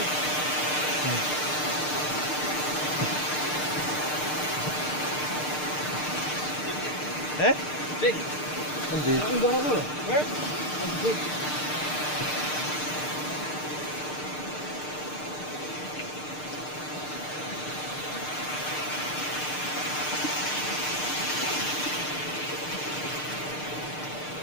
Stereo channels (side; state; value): right; late; 6.6 ms